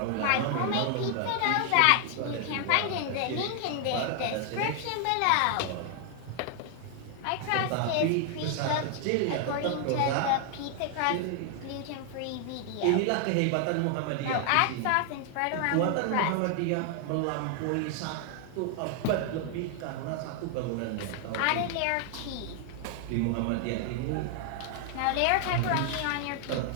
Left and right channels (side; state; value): both; different; correlation 0.00